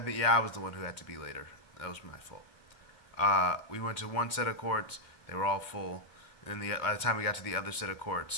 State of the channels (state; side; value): late; right; 2.2 ms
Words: think I was the one who had to be later. That was my fault. We went to one set of courts; they were all full. And then by the time we got to the other set of